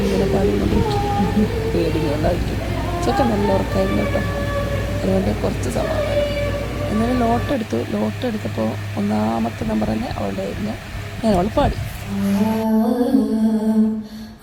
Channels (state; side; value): identical; both; correlation 1.00